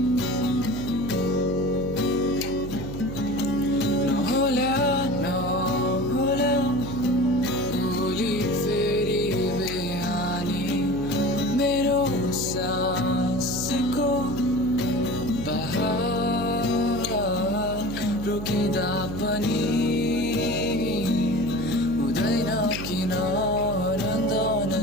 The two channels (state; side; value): noise; right; hum, 8 dB below the sound